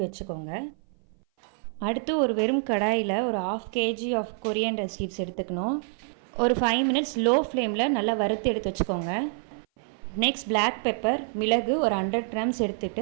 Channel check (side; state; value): left; silent; 57 dB below the other